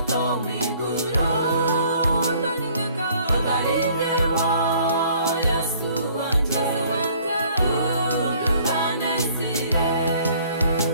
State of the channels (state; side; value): inverted; both; correlation -0.57